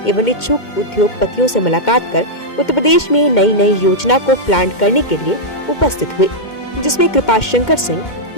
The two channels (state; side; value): late; right; 2.1 ms